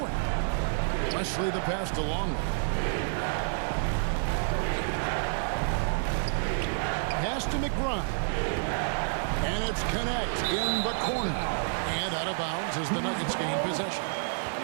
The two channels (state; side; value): silent; left; 55 dB below the other